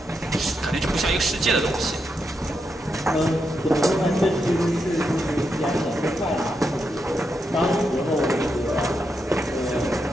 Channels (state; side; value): normal; both; correlation 0.83